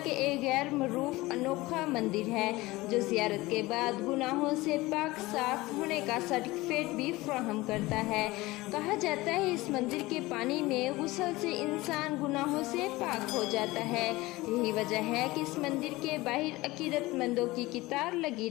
کے ایک غیر معروف انوکھا مندر ہے جو زیارت کے بعد گناہوں سے پاک صاف ہونے کا سرٹیفکیٹ بھی فراہم کرتا ہے۔ کہا جاتا ہے اس مندر کے پانی میں غسل سے انسان گناہوں سے پاک ہو جاتا ہے۔ یہی وجہ ہے کہ اس مندر کے باہر عقیدت مندوں کی قطار لگی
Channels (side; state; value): right; quieter; 20.1 dB